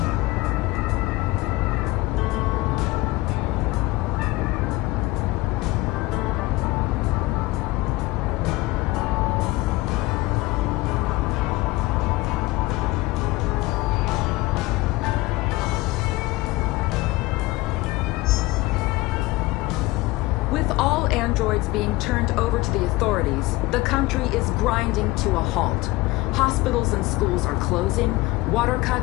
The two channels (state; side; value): quieter; right; 20.1 dB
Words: With all androids being turned over to the authorities, the country is grinding to a halt. Hospitals and schools are closing, water